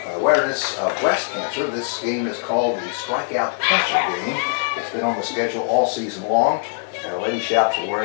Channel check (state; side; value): silent; right; 62 dB below the other